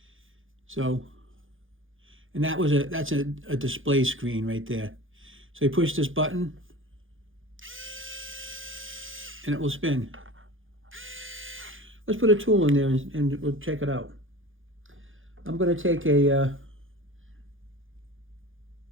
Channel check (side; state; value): left; late; 0.58 ms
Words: So, and that's a display screen right there. So you push this button and it will spin. Let's put a tool in there and we'll check it out. I'm going to take a